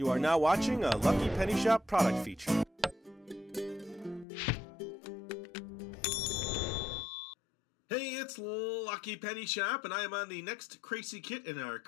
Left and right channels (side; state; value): right; drops out; at 4.2 s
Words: are now watching a Lucky Penny Shop product feature. Hey, it's Lucky Penny Shop, and I am on the next Kracie Kit in our